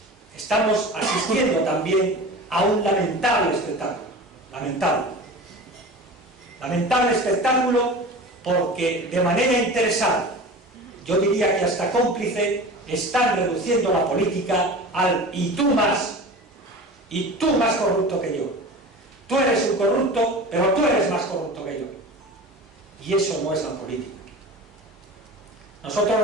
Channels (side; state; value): both; normal; correlation 0.35